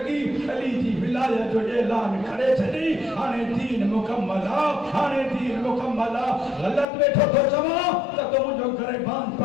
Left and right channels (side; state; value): right; drops out; at 6.9 s